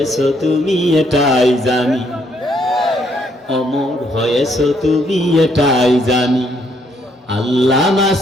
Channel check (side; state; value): both; normal; correlation 0.70